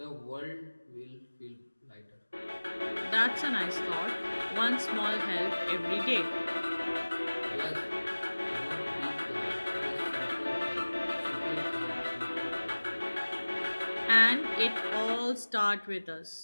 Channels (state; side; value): inverted; both; correlation -1.00